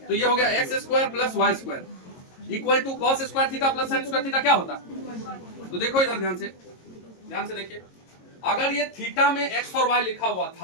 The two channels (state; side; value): late; right; 22 ms